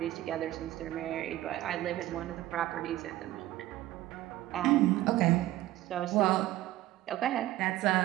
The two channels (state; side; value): quieter; left; 15.5 dB